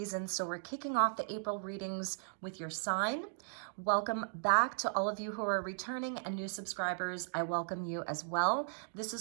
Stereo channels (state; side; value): silent; left; digital silence